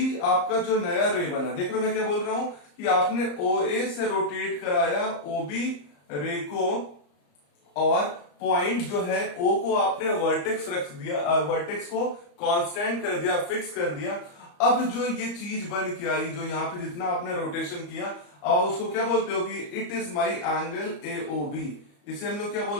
आपका जो नया रे बना, देख रहे हो मैं क्या बोल रहा हूं कि आपने OA से रोटेट कराया OB रे को, और पॉइंट जो है O को आपने वर्टेक्स रख दिया, वर्टेक्स को कांस्टेंट कर दिया, फिक्स कर दिया। अब जो ये चीज बन के आई, जो यहाँ पे जितना आपने रोटेशन किया, और उसको क्या बोलते हो कि it is my angle AOB। इसे हम लोग क्या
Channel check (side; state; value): right; late; 34 ms